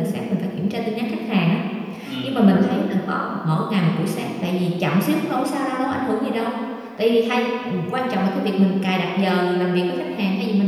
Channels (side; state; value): both; identical; correlation 1.00